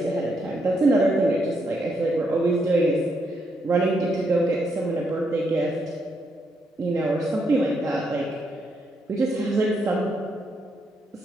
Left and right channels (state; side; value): normal; both; correlation 0.78